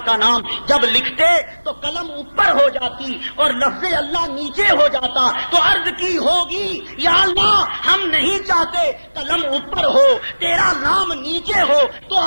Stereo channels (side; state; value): both; inverted; correlation -1.00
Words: کا نام۔ جب لکھتے تو قلم اوپر ہو جاتی اور لفظ اللہ نیچے ہو جاتا، تو عرض کی ہوگی یا اللہ ہم نہیں چاہتے قلم اوپر ہو، تیرا نام نیچے ہو، تو